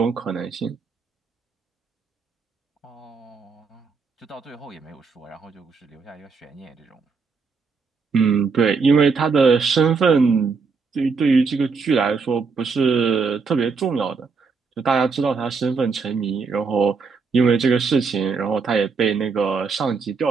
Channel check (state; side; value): quieter; left; 5.0 dB